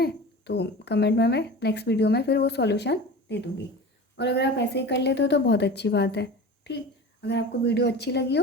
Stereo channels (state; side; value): normal; both; correlation 0.34